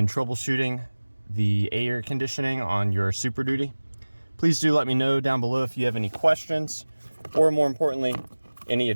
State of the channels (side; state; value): both; inverted; correlation -1.00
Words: troubleshooting the air conditioning on your Superduty. Please do let me know down below if you have any questions, or more importantly, any